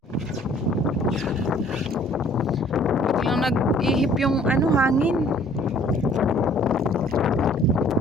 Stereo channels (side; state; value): both; normal; correlation 0.56